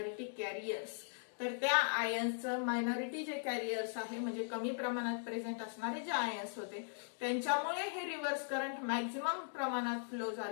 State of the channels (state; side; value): silent; right; digital silence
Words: carriers. तर त्या आयन्सचं मायनॉरिटी जे कॅरियर्स आहे म्हणजे कमी प्रमाणात प्रेझेंट असणारे जे आयन्स होते त्यांच्यामुळे हे रिव्हर्स करंट मॅक्झिमम प्रमाणात फ्लो